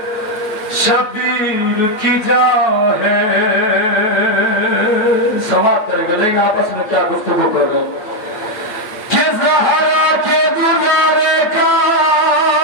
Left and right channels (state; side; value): late; right; 8.6 ms